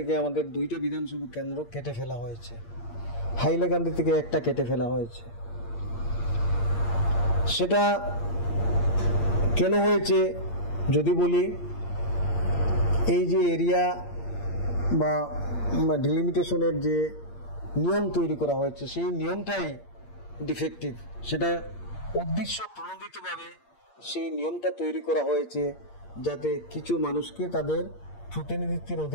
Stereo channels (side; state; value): right; late; 8.6 ms